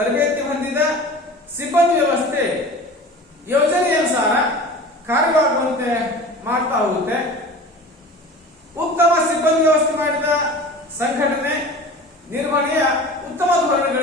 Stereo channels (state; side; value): normal; both; correlation 0.38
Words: ಹೊಂದಿದ ಸಿಬ್ಬಂದಿ ವ್ಯವಸ್ಥೆ ಯೋಜನೆಯನುಸಾರ ಕಾರ್ಯವಾಗುವಂತೆ ಮಾಡ್ತಾ ಹೋಗುತ್ತೆ. ಉತ್ತಮ ಸಿಬ್ಬಂದಿ ವ್ಯವಸ್ಥೆ ಮಾಡಿದ ಸಂಘಟನೆ ನಿರ್ವಹಣೆಯ ಉತ್ತಮ